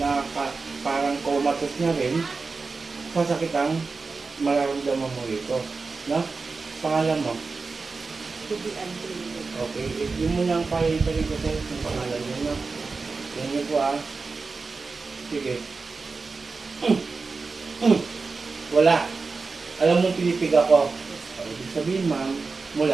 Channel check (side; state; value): left; quieter; 4.2 dB